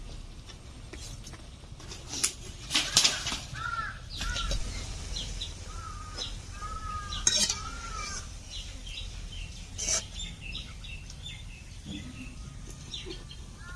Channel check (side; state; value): both; identical; correlation 1.00